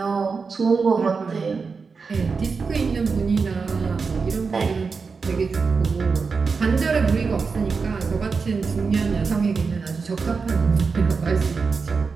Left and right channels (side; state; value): left; quieter; 4.9 dB